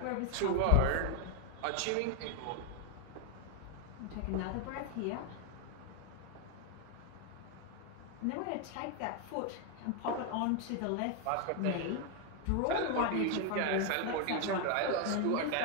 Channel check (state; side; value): different; both; correlation 0.01